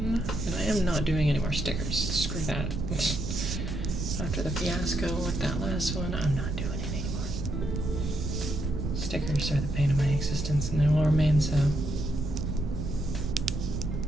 And I am not doing any more stickers. Screw that. After the fiasco with that last one, I'm not doing it anymore. Stickers are the pain of my existence, and they will remain so.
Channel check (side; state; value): right; noise; rumble, 3 dB below the sound